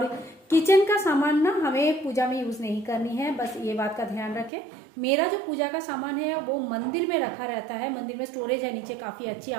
किचन का सामान ना हमें पूजा में यूज़ नहीं करनी है, बस ये बात का ध्यान रखें। मेरा जो पूजा का सामान है वो मंदिर में रखा रहता है। मंदिर में स्टोरेज है नीचे, काफ़ी अच्छी,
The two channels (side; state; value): left; drops out; at 4.5 s